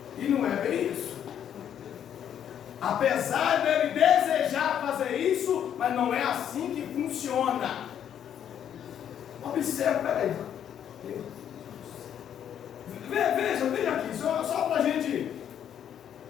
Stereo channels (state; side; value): quieter; right; 9.5 dB